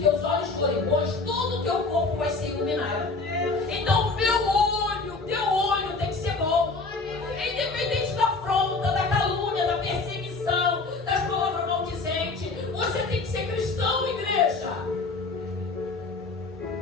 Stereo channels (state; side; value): quieter; right; 3.9 dB